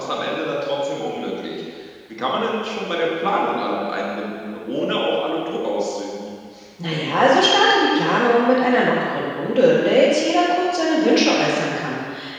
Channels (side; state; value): both; identical; correlation 1.00